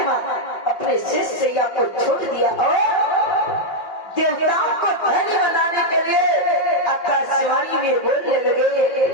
अपने शेषैया को छोड़ दिया और देवताओं को धैर्य बनाने के लिए आकाशवाणी में बोलने लगे।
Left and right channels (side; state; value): right; late; 5.7 ms